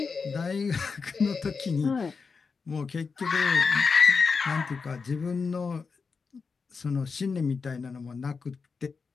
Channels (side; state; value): right; quieter; 5.0 dB